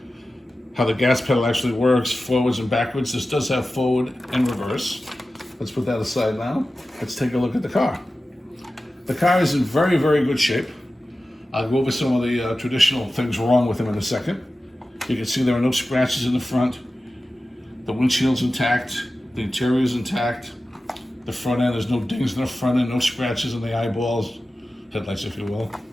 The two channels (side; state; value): both; normal; correlation 0.94